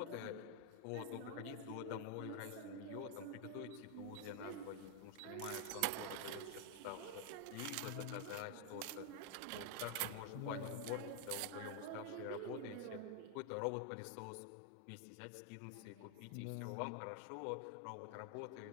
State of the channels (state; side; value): different; both; correlation 0.00